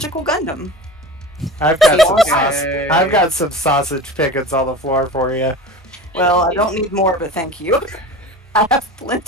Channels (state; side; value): normal; both; correlation 0.33